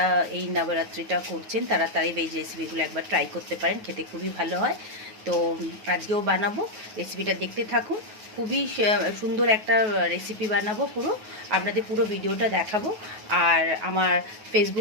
এই নবরাত্রিটা করছেন তারা তাই ভেজ রেসিপিগুলো একবার ট্রাই করতে পারেন, খেতে খুবই ভালো হয়। তো আজকেও বানাবো, রেসিপিটা দেখতে থাকুন। খুবই সুন্দর একটা রেসিপি বানাবো, আপনাদের পুরো ভিডিওটা দেখাবো। আর আমার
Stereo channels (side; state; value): left; late; 9.4 ms